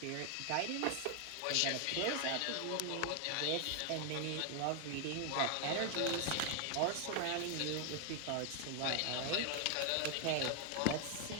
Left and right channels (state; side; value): different; both; correlation 0.00